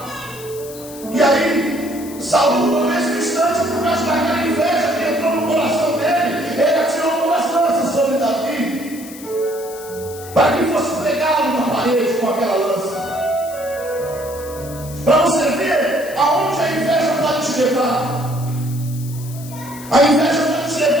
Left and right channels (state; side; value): noise; left; hiss, 16 dB below the sound